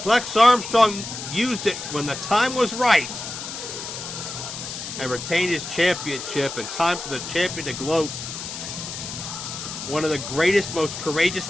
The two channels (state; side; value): noise; left; hiss, 8 dB below the sound